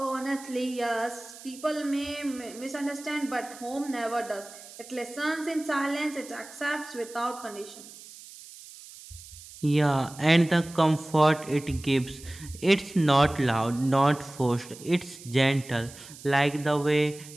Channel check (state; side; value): noise; right; hiss, 17 dB below the sound